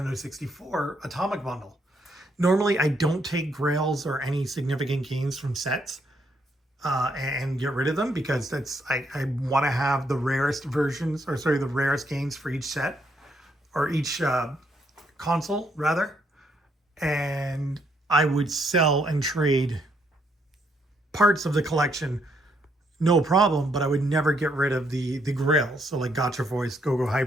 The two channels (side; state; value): both; normal; correlation 0.73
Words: 64 Atomic Bundle. Normally, I don't take grails or any significant gains from sets and get rid of them because I want to have the rarest versions, or sorry, the rarest gains for each set or each console, rather. And I would sell and trade parts of the collection, no problem, but I would never get rid of the grails. So like Gotcha Voice, Go-Go